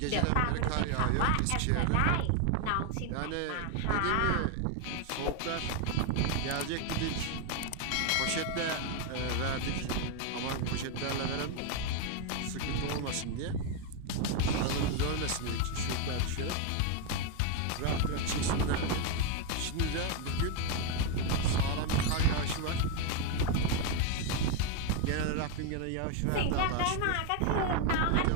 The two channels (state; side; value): different; both; correlation 0.01